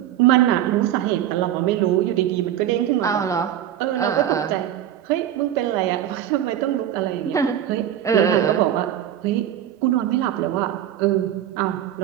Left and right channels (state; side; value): quieter; left; 11.2 dB